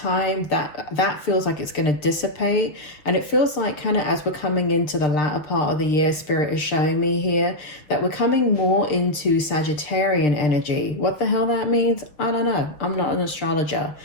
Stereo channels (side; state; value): right; late; 6.4 ms